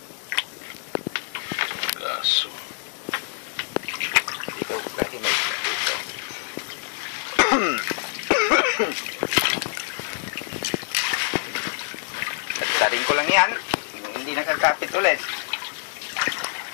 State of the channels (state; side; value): silent; right; digital silence